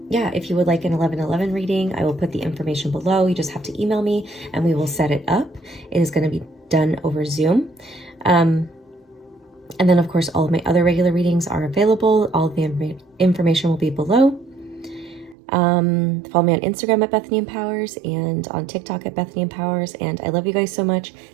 if you would like an 11/11 reading, I will put the information below. You just have to email me and we will set it up. It is going to be done over Zoom. And then, of course, all of my other regular readings are available. All of the information will be below. Follow me on Instagram at Bethany Empowers and on TikTok at Bethany Empowers. And I love you guys so much.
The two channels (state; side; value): drops out; left; at 15.4 s